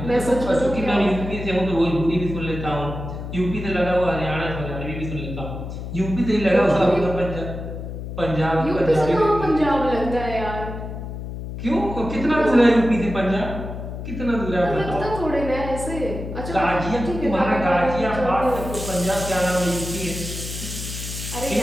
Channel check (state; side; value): noise; left; hum, 8 dB below the sound